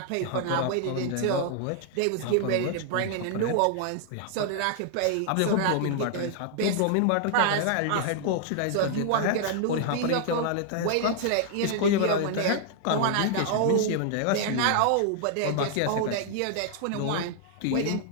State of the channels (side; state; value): both; different; correlation 0.00